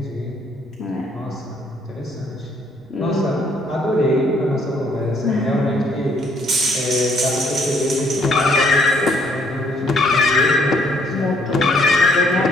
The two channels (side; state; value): both; normal; correlation 0.66